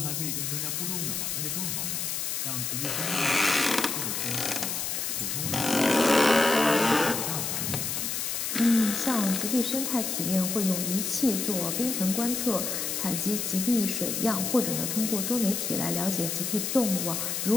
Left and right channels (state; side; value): noise; left; hiss, 2 dB below the sound